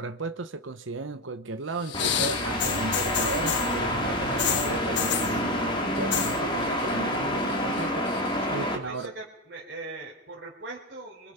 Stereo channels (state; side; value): normal; both; correlation 0.13